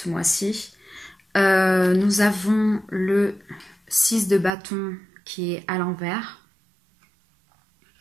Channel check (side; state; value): left; drops out; at 4.5 s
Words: mois-ci. Nous avons le 6 de bâton qui est à l'envers